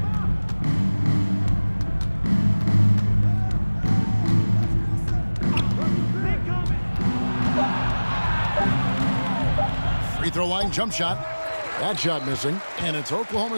Free throw line jump shot. That shot missing. And it's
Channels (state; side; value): inverted; both; correlation -1.00